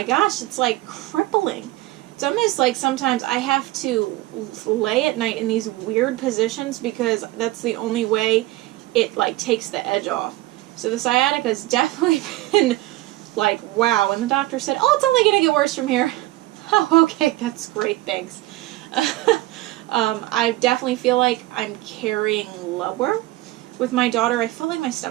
gosh, it's like crippling. It's almost like sometimes I have to lay at night in these weird positions because that's the only way it like takes the edge off. So the sciatica has definitely been like, wow. And the doctor said, oh, it's only going to get worse from here. Oh, okay, that's great, thanks. I definitely feel like I'm carrying lower. With my daughter, I felt like my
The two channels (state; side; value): quieter; left; 17.6 dB